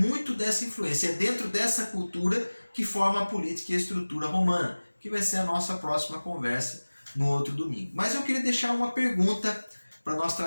dessa influência, é dentro dessa cultura que forma a política e a estrutura romana, que vai ser a nossa próxima conversa no outro domingo. Mas eu queria deixar uma pergunta para nós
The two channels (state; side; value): inverted; both; correlation -1.00